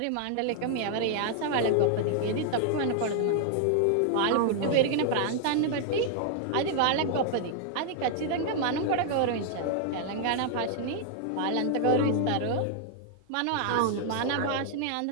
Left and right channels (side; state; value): both; different; correlation -0.01